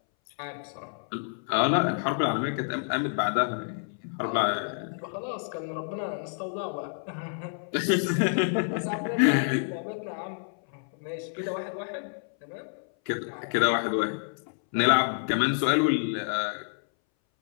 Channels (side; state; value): right; silent; 59 dB below the other